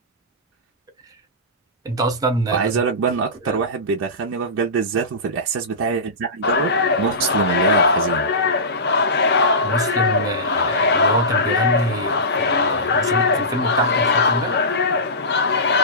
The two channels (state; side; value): normal; both; correlation -0.20